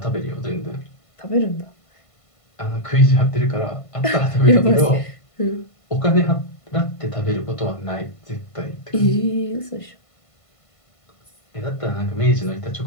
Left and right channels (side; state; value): right; late; 1.5 ms